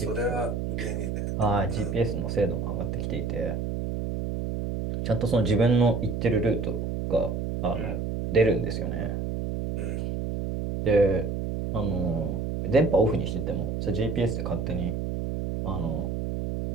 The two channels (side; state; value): right; noise; hum, 2 dB below the sound